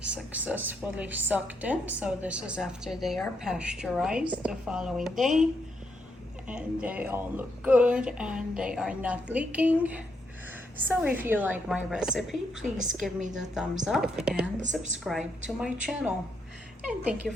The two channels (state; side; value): normal; both; correlation 0.78